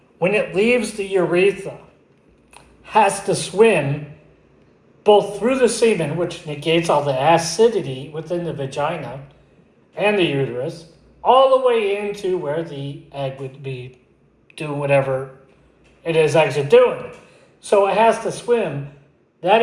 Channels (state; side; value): identical; both; correlation 1.00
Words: when it leaves the urethra, has to swim both through the semen, which negates all the acidity within the vagina and the uterus, all the way into where the egg would be doing whatever it is actually doing. So it has to swim that